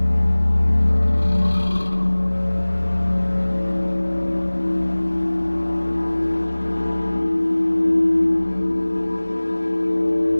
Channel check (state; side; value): inverted; both; correlation -1.00